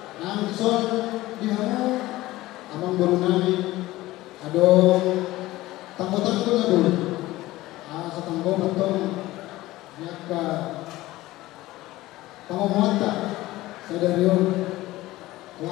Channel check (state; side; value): quieter; right; 17.6 dB